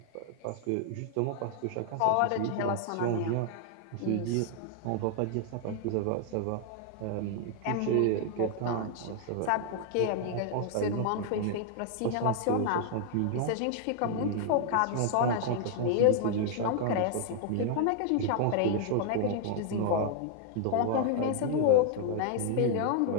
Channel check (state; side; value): different; both; correlation 0.00